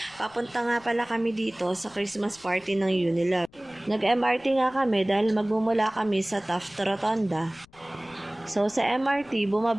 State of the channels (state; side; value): noise; left; rumble, 28 dB below the sound